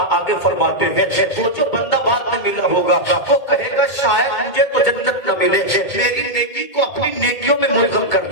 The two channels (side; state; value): right; late; 2.2 ms